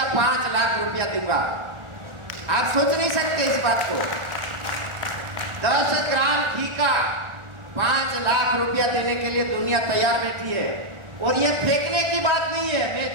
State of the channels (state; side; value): late; left; 1.4 ms